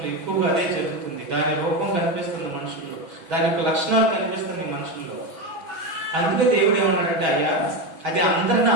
ఎక్కువగా అదే జరుగుతుంది. దాని రూపం కనిపిస్తుంది మనుషుల్లో, దాని యొక్క లక్షణాలు కనిపిస్తుంది మనుషుల్లో. అందుకే దేవుడు ఏమన్నాడంటే, అయ్యా అది అందరిని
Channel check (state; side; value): late; left; 6.2 ms